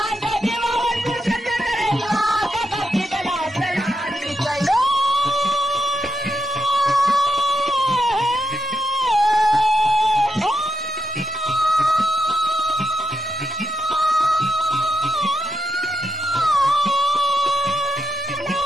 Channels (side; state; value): both; normal; correlation 0.83